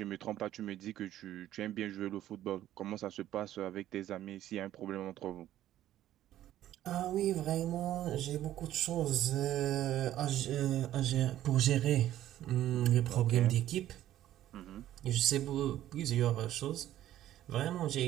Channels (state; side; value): quieter; left; 12.9 dB